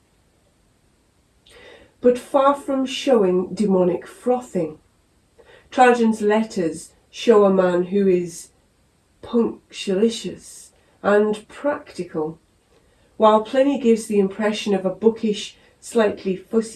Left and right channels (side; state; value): both; identical; correlation 1.00